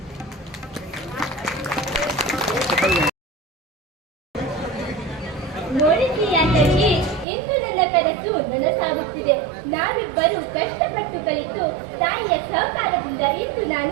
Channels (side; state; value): left; drops out; at 7.2 s